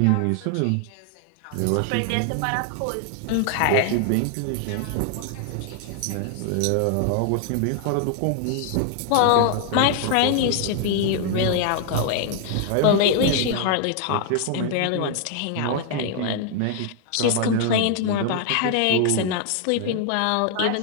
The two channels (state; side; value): different; both; correlation 0.00